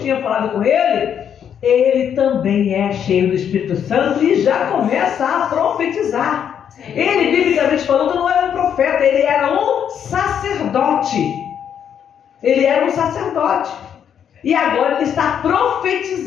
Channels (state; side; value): quieter; right; 8.6 dB